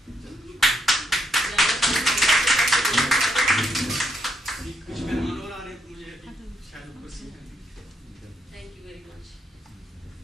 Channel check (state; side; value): normal; both; correlation 0.77